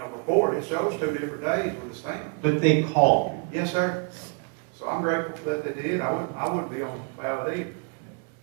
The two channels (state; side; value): quieter; left; 37.2 dB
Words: before it shows 2 different days with a stamp. But they called you. Yes, sir. So I'm grateful for that they did. I wouldn't be on the ballot either.